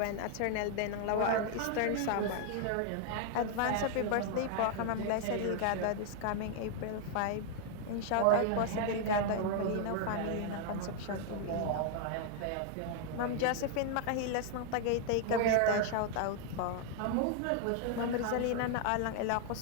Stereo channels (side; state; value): both; different; correlation 0.00